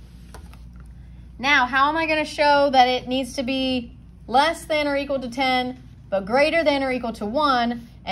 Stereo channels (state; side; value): identical; both; correlation 1.00